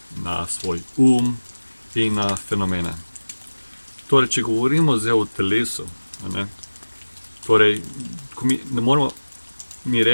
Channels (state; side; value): inverted; both; correlation -1.00